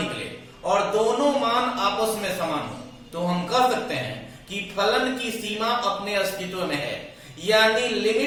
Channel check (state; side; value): identical; both; correlation 1.00